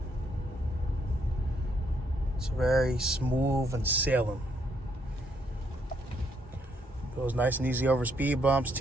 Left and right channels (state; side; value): normal; both; correlation 0.73